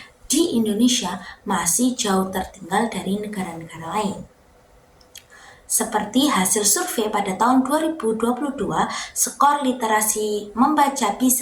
di Indonesia masih jauh tertinggal dari negara-negara lain. Seperti hasil survei pada tahun 2022, skor literasi membaca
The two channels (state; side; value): identical; both; correlation 1.00